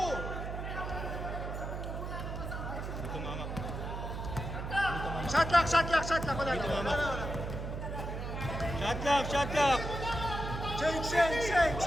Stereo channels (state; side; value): noise; right; hum, 5 dB below the sound